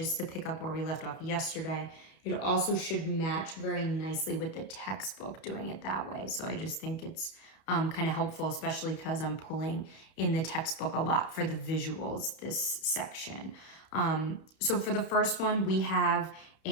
to pick up where we left off yesterday. It also should match very nicely with the textbook doing it that way. So I just think it's kind of helpful, especially because I'm pulling in the textbook a lot for the visuals this section. So for the first one, we have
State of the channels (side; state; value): right; late; 32 ms